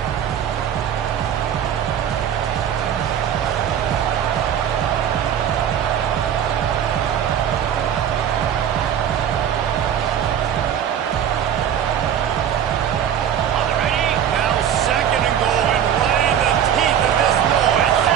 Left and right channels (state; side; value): quieter; left; 9.3 dB